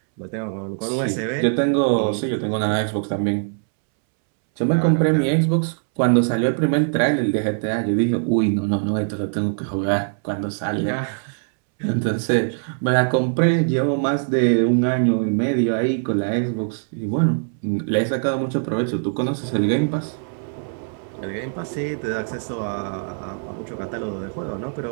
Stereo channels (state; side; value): silent; left; 64 dB below the other